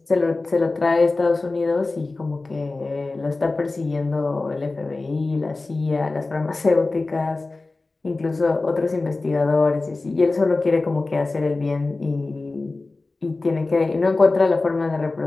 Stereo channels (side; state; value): right; quieter; 3.4 dB